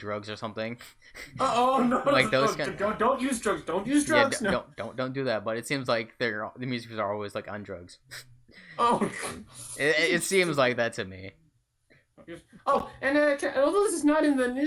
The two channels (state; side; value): identical; both; correlation 1.00